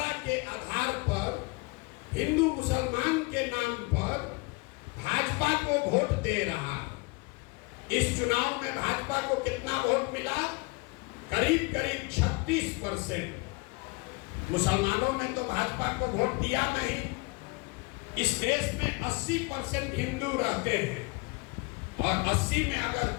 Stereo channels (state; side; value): quieter; right; 26.9 dB